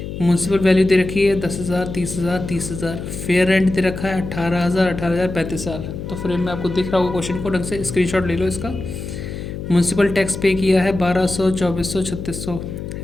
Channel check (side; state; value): left; noise; hum, 8 dB below the sound